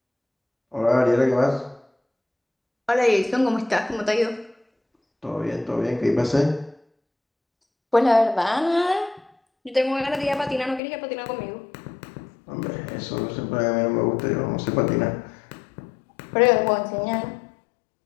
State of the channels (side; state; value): right; drops out; at 10.8 s